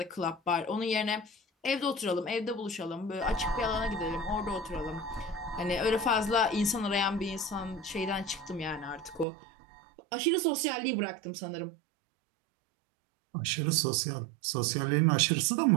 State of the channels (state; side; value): drops out; left; at 9.2 s